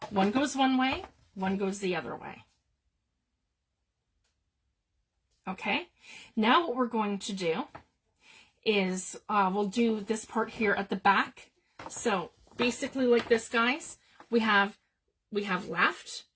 1 goes one way, 1 goes the other way. Okay? Now what we're going to do is we'll do this part here at the back. So basically like this, guys. We have left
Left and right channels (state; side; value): identical; both; correlation 1.00